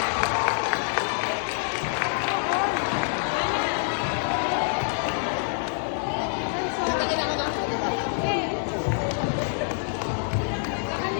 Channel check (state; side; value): silent; right; digital silence